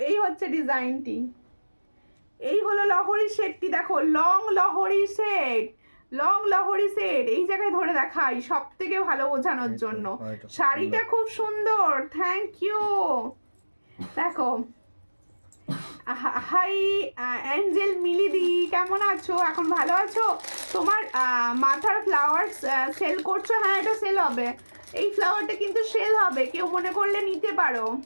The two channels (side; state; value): both; inverted; correlation -1.00